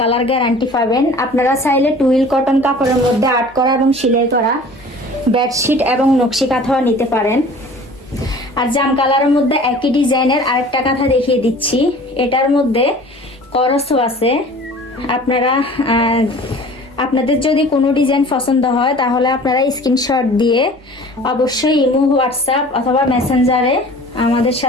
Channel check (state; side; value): normal; both; correlation 0.45